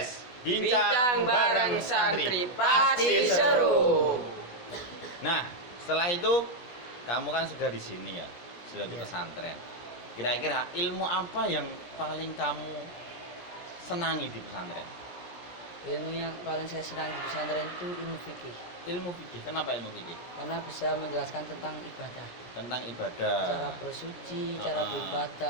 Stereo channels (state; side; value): late; right; 17 ms